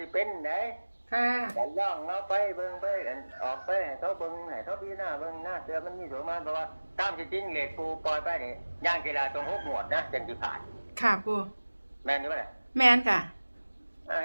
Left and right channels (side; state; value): both; inverted; correlation -1.00